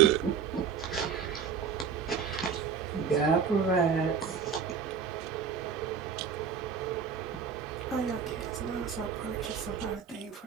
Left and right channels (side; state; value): left; quieter; 6.7 dB